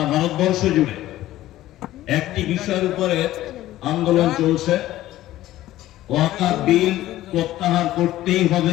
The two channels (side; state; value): right; quieter; 14.9 dB